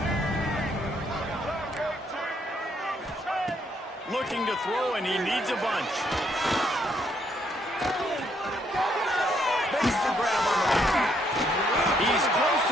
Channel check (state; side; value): normal; both; correlation 0.71